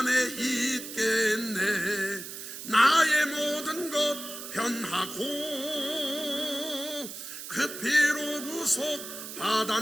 있겠네. 나의 모든 것 변하고 그 피로 구속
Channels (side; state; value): right; noise; hiss, 10 dB below the sound